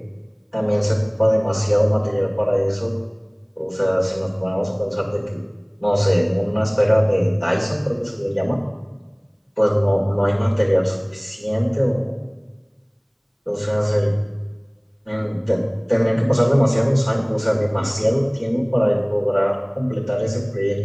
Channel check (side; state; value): both; identical; correlation 1.00